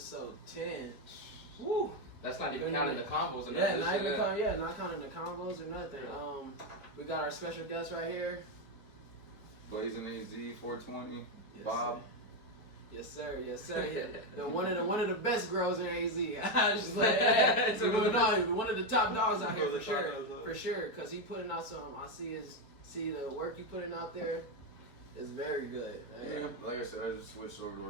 10. Woo! That's not even counting the combos. And Yeah, not counting the combos or nothing. We got our special guest right here. Blazin HZ 420. Yes, Bob. Sir. Yes, sir. Yes, sir. The one of the best girls in AZ. I just like, one of the top dogs out here for sure. For sure, cause he putting out some. I see the work you putting out there is very good. Yeah, like I said, I just switched over to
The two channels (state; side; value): late; right; 4.2 ms